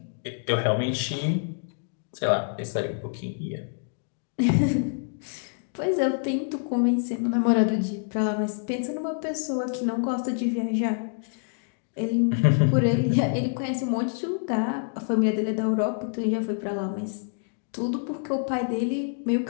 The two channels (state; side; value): silent; right; digital silence